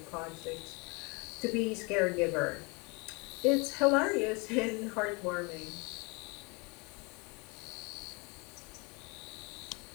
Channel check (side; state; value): right; quieter; 29.3 dB